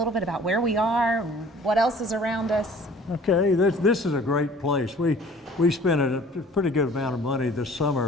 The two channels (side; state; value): both; normal; correlation 0.51